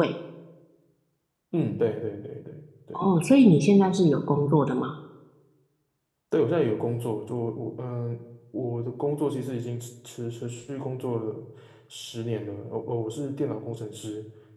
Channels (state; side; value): identical; both; correlation 1.00